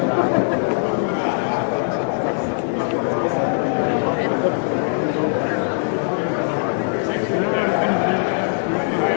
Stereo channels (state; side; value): silent; right; digital silence